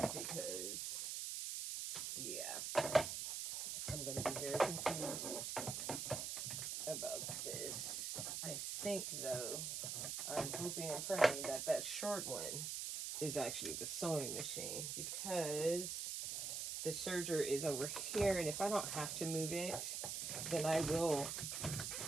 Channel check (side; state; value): right; noise; hiss, 3 dB below the sound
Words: because, yeah, I'm going to be very confused about this. I think, though, I'm hoping and praying that that short one is actually the sewing machine, because the serger is over here, and if I don't have to move it, then I will